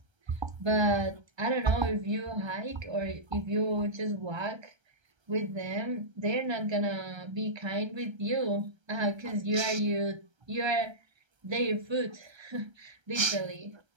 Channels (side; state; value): left; late; 1.3 ms